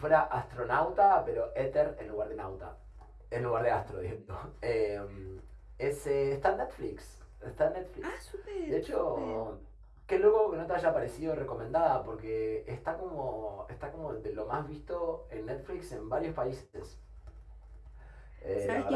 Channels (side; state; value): both; identical; correlation 1.00